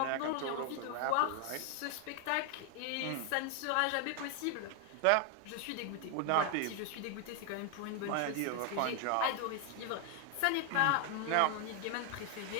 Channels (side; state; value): both; different; correlation 0.01